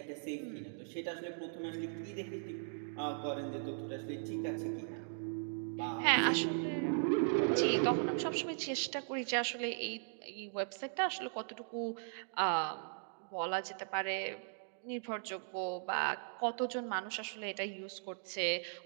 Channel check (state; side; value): silent; left; digital silence